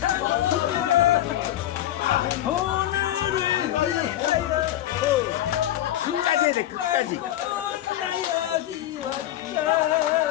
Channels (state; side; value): quieter; right; 13.0 dB